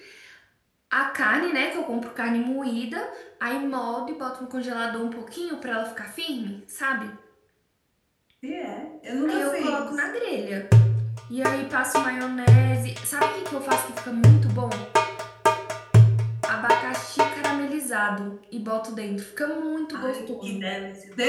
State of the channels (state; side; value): identical; both; correlation 1.00